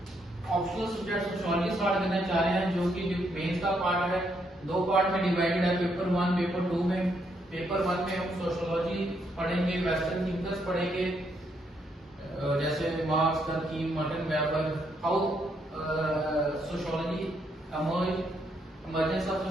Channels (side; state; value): both; normal; correlation 0.75